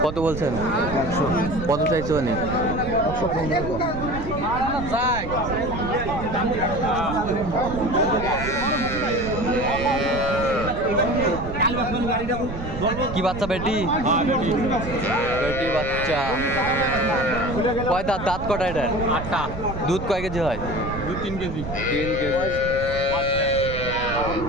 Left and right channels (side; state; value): right; noise; rumble, 8 dB below the sound